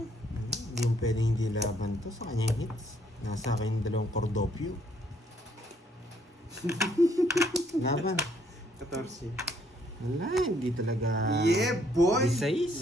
yung pwedeng hindi laban to sa kanyang hits. Nasa akin yung dalawang Cordopio. Laban. 14. Wala, hindi talaga... Yeah, boy! Size.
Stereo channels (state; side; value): normal; both; correlation 0.66